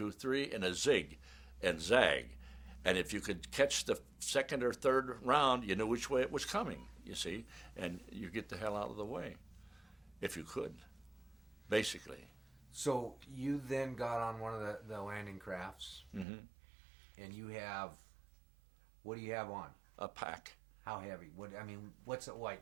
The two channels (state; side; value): drops out; left; at 16.2 s